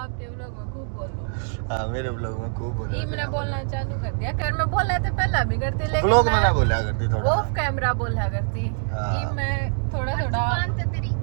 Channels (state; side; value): silent; left; digital silence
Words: व्लॉग में खूब बोलो। हाँ मेरे व्लॉग में खूब बोल ये मैंने बोलना चालू कर दिया, कर मैं बोला था पहला भी करती लेकिन व्लॉग में ना बोला करती थोड़ा ऑफ कैमरा बोला करती। हाँ। ये मैं थोड़ा जुबान तो तेरी